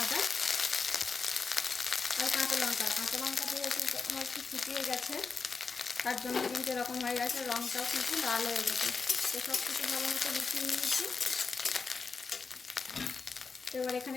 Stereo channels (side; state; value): right; quieter; 4.8 dB